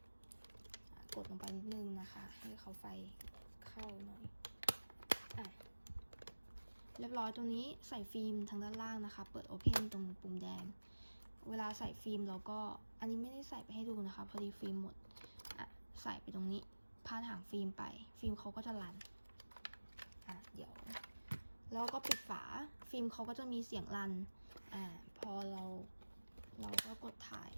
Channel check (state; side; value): inverted; both; correlation -1.00